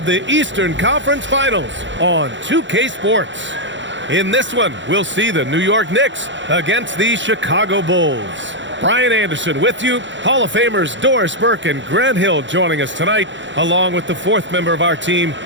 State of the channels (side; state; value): left; late; 0.54 ms